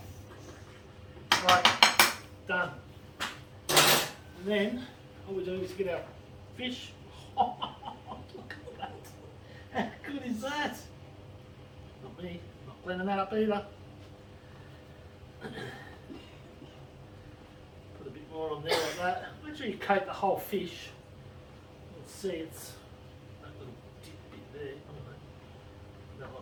Right, done. And then all we do is get our fish. Oh, look at that. How good is that? Not me, not cleaning that up either. Put a bit more on there like that. Make sure you coat the whole fish. You'll see it's that little dip bit there. I don't know. Put that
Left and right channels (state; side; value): identical; both; correlation 1.00